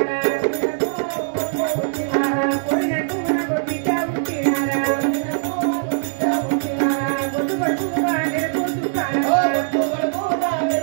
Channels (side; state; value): left; silent; digital silence